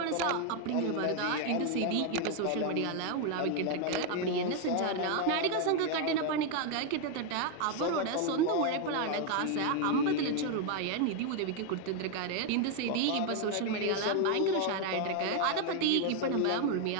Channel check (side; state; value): both; different; correlation 0.01